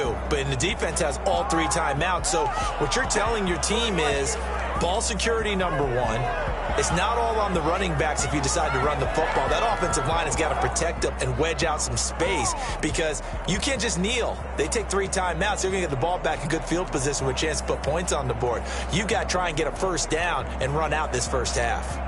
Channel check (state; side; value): identical; both; correlation 1.00